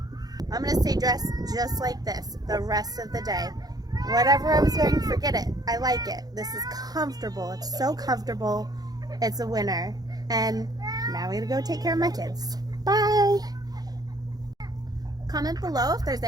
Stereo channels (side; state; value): left; late; 0.19 ms